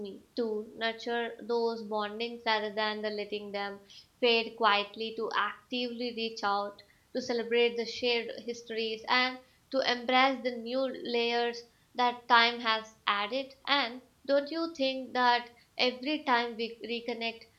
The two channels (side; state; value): both; identical; correlation 1.00